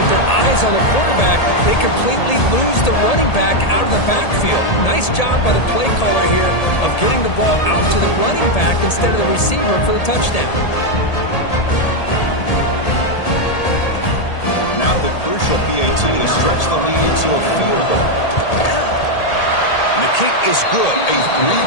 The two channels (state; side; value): late; right; 1.8 ms